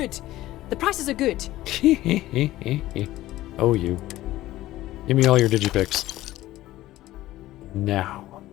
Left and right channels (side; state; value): right; quieter; 15.8 dB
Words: The prices are good. Oh, you. Give me all your digipix. Now.